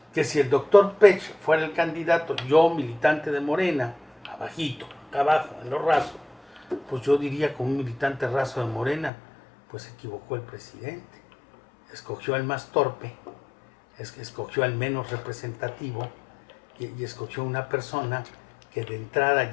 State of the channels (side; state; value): right; drops out; at 9.1 s